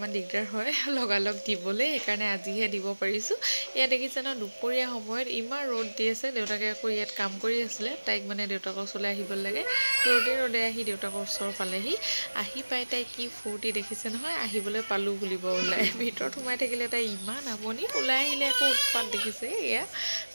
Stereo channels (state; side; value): inverted; both; correlation -1.00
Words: দিগদাৰ হয় লগালগ দিবলৈ সেইকাৰণে আজিহে দিব পাৰিছোঁ। ইয়াত দেখিছে ন দুপৰীয়া সময়ত ইমান ৰ'দ দি আছে দেউতাকে আকৌ ইয়াত কাম কৰি আছিলে তাইক মানে দেউতাকৰ ওচৰলৈ আহিব লাগে ৰ'দে আহি দেউতাকৰ ওচৰ পালেহি আহি পাই তাই কি ফূৰ্তি দেখিছে নহয় আহিবলৈ পালোঁ বুলিব ওলাই ভিতৰত সোমাই থাকিলে তাই ইমান আমনি ওলাই আহিলে আকৌ উৎপাত দেখিছে এয়া